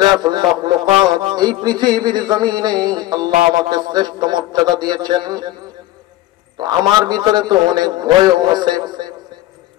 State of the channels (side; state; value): right; quieter; 15.7 dB